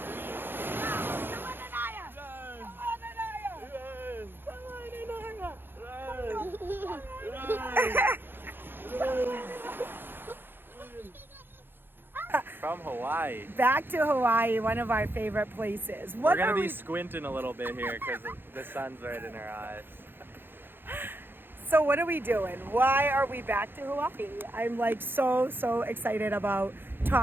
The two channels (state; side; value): late; left; 0.10 ms